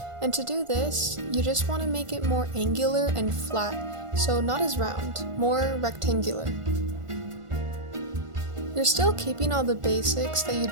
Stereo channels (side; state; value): left; late; 1.5 ms